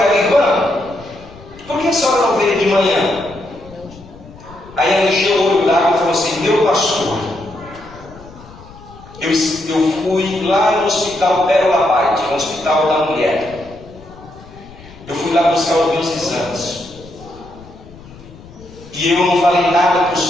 ela, irmã, por que a senhora não veio de manhã? Aí ela encheu o olho d'água e falou assim, meu pastor, eu fui lá no hospital Pérola Paz, no hospital da mulher. Eu fui lá buscar os meus exames. E eu não falei nada para o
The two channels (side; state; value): left; noise; rumble, 20 dB below the sound